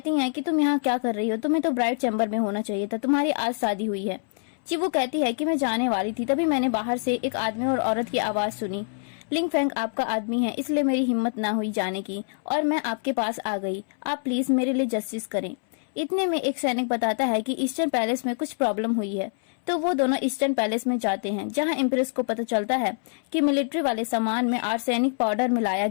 हैं कि तुम यहाँ क्या कर रही हो, तुम्हें तो ब्राइड चैम्बर में होना चाहिए था, तुम्हारी आज शादी हुई है। चीबू कहती है कि मैं जाने वाली थी तभी मैंने बाहर से एक आदमी और औरत की आवाज सुनी। लिंग फैंग आपका आदमी है इसलिए मेरी हिम्मत ना हुई जाने की और मैं आपके पास आ गई, आप प्लीज मेरे लिए जस्टिस करें। इतने में एक सैनिक बताता है कि ईस्टर्न पैलेस में कुछ प्रॉब्लम हुई है, तो वो दोनों ईस्टर्न पैलेस में जाते हैं जहां इम्प्रेस को पता चलता है कि मिलिट्री वाले सामान में आर्सेनिक पाउडर मिलाया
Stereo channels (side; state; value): right; silent; 61 dB below the other